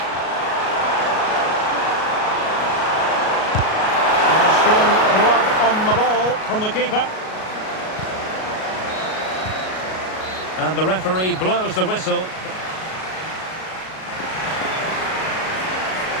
And a strong blood on the ball from the keeper. And the referee blows the whistle.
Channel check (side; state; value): right; late; 37 ms